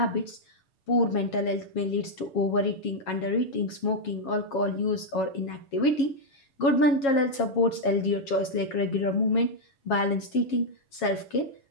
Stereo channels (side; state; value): right; late; 7.3 ms